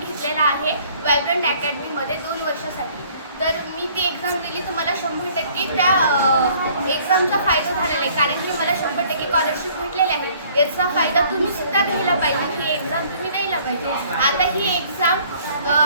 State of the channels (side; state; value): both; inverted; correlation -0.57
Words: आहे वायब्रंट अकॅडमीमध्ये 2 वर्षासाठी. तर मी ती एक्झाम दिली तर मला 100% त्या एक्झामचा फायदा झालेला आहे, कारण की मला 100% स्कॉलरशिप भेटलेली आहे. याचा फायदा तुम्ही सुद्धा घ्यायला पाहिजे. ही एक्झाम तुम्ही द्यायला पाहिजे. आता ही